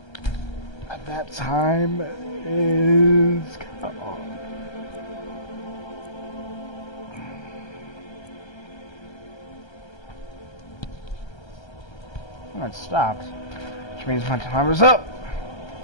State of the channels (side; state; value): right; late; 1.3 ms